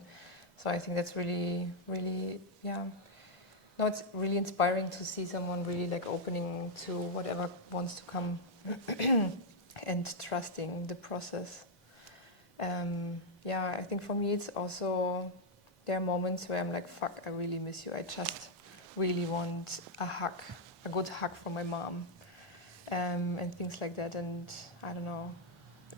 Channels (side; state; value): both; normal; correlation -0.02